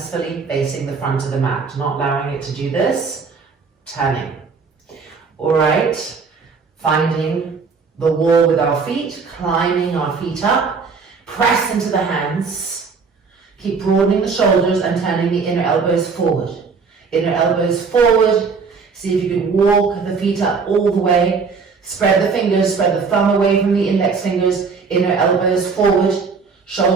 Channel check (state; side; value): quieter; left; 5.1 dB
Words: facing the front of the mat, not allowing it to do this, turning. All right, finding the wall with our feet, climbing our feet up. Press into the hands. Keep broadening the shoulders and turning the inner elbows forward. Inner elbows forward. See if you can walk the feet up all the way. Spread the fingers, spread the thumb away from the index fingers. Inner elbows forward.